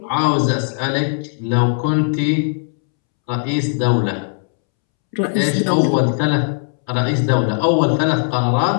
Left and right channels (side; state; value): right; silent; 67 dB below the other